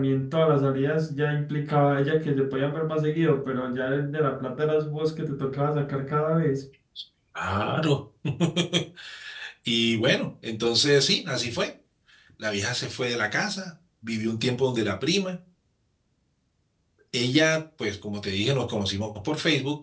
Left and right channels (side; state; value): both; identical; correlation 1.00